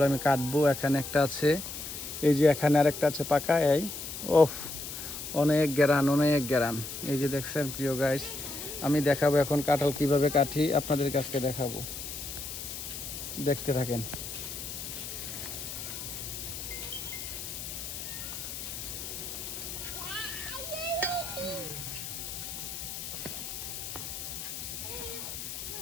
আমি কাটবো। এখানে একটা আছে, এই যে এখানে আরেকটা আছে পাকা। এই ওফ, অনেক গ্যারান অনেক গ্যারান। এই যে দেখছেন প্রিয় গাইস, আমি দেখাবো এখন কাঁঠাল কিভাবে কাটি, আপনাদের কাছকে দেখাবো, দেখতে থাকেন।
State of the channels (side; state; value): left; noise; hiss, 8 dB below the sound